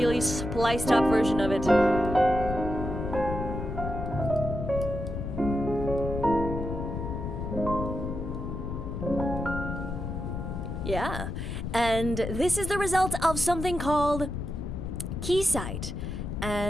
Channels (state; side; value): noise; left; rumble, 5 dB below the sound